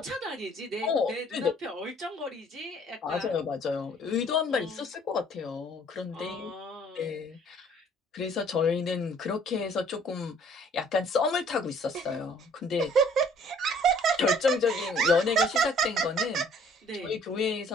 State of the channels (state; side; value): normal; both; correlation 0.57